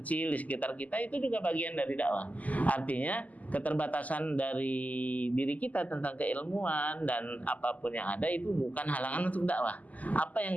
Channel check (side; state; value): right; late; 0.076 ms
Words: kecil di sekitar kita, itu juga bagian dari dakwah. Artinya keterbatasan dari diri kita tentang keilmuan dan apapun yang ada itu bukan halangan untuk dakwah. Apa yang